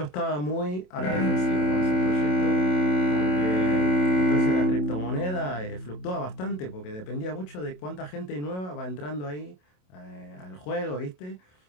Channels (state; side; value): late; right; 27 ms